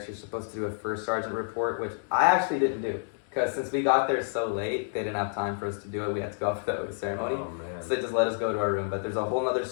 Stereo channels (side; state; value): right; silent; digital silence